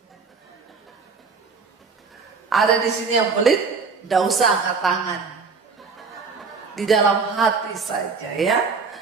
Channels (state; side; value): quieter; left; 4.9 dB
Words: Ada di sini yang pelit, tidak usah angkat tangan. Di dalam hati saja ya.